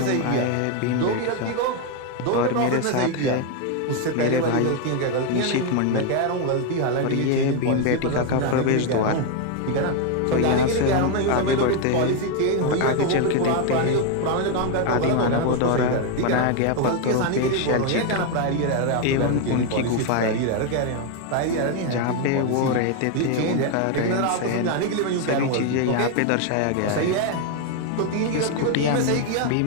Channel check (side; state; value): both; different; correlation 0.01